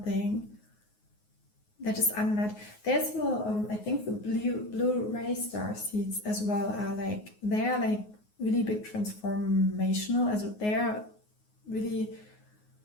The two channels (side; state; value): right; late; 9.5 ms